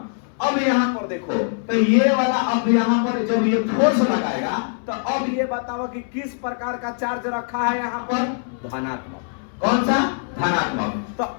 अब यहाँ पर देखो, तो ये वाला अब यहाँ पर जब ये फोर्स लगाएगा, तो अब ये बताओ कि किस प्रकार का चार्ज रखा है यहाँ पर, धनात्मक। कौन सा? धनात्मक। तो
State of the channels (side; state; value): right; silent; 61 dB below the other